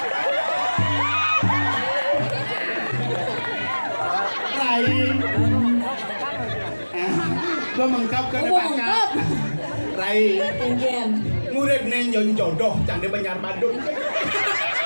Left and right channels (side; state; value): both; inverted; correlation -1.00